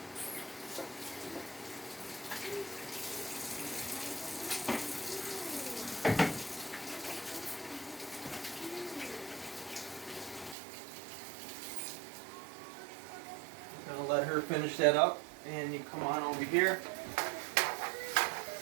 I'm going to let her finish that up, and you come on over here.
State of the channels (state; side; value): drops out; left; at 10.6 s